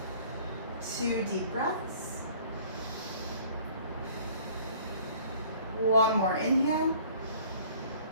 2 deep breaths. 1 more inhale.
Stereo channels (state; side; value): inverted; both; correlation -0.53